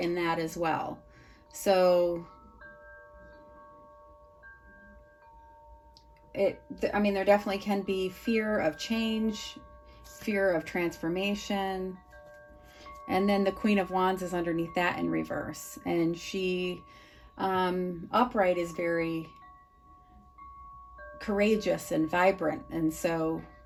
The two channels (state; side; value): identical; both; correlation 1.00